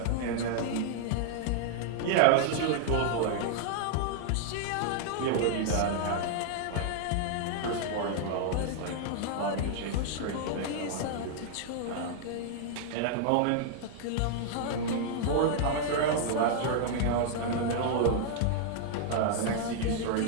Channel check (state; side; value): different; both; correlation -0.01